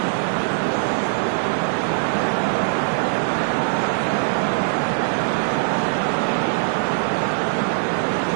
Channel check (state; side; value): silent; left; digital silence